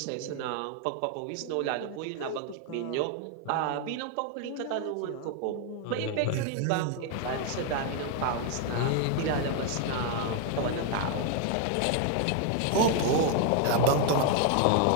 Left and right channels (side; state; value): both; different; correlation 0.00